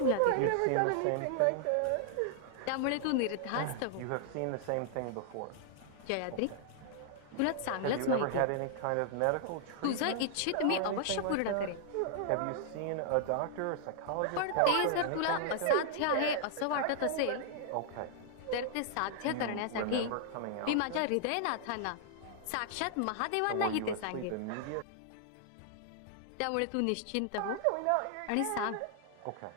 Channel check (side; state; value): both; different; correlation -0.01